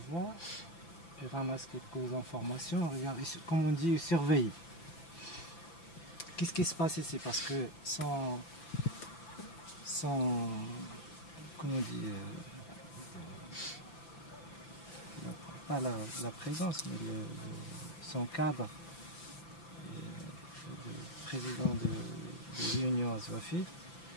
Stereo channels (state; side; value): late; right; 5.9 ms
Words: voient, ils ramassent quelques informations, regardent, comme on dit, ils surveillent. Qu'est-ce qui se passe ici? Parce que sans comment on dit, pas la présence, mais son cadre, le président de l'Union Azwafite,